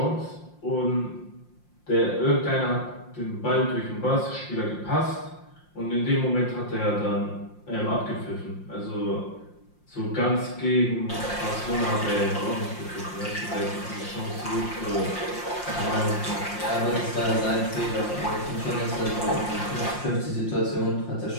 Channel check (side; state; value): right; late; 5.7 ms